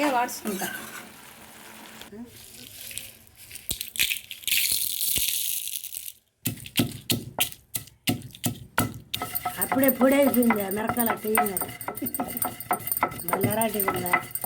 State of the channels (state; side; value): identical; both; correlation 1.00